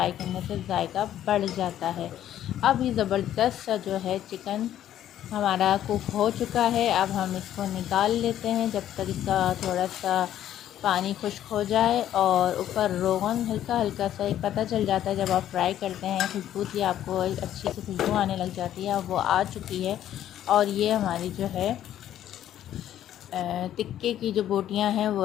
करने से जायका बढ़ जाता है। अब ये ज़बरदस्त सा जो है चिकन हमारा कुक हो चुका है। अब हम इसको निकाल लेते हैं, जब तक इसका थोड़ा सा पानी खुश्क हो जाए और ऊपर रोगन हल्का हल्का सा एक पता चल जाता है। जब आप फ्राई करते हैं खुशबू की आपको एक अच्छी सी खुशबू आने लग जाती है। अब वो आ चुकी है और ये हमारी जो है टिक्के की जो बोटियां हैं वो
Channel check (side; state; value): right; quieter; 11.6 dB